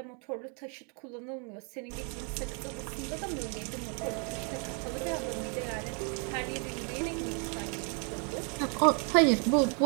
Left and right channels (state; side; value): quieter; left; 37.4 dB